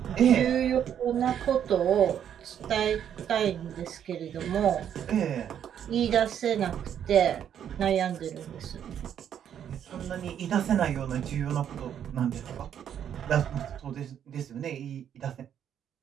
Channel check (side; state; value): left; quieter; 9.3 dB